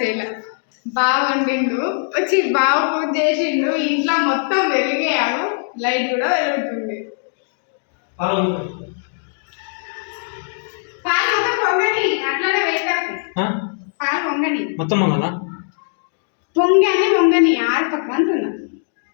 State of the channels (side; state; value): right; silent; digital silence